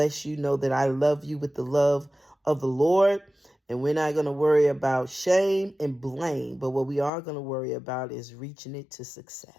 you. Know that I love you with the love of the Lord. And we're not going to worry about shame and blame, but what we are going to worry about is reaching it to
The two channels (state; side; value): drops out; right; at 7.1 s